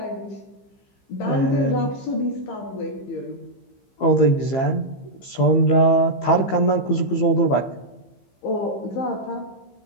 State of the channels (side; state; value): right; late; 15 ms